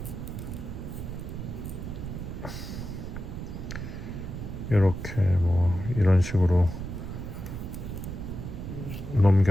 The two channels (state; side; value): noise; right; rumble, 7 dB below the sound